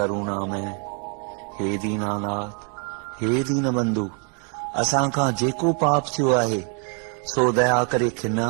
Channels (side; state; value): left; quieter; 39.8 dB